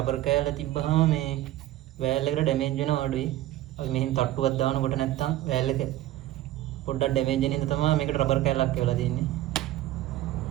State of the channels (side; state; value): left; quieter; 14.6 dB